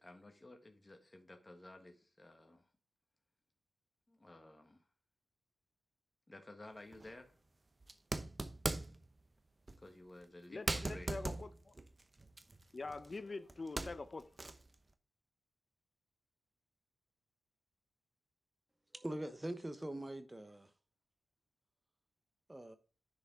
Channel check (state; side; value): normal; both; correlation 0.96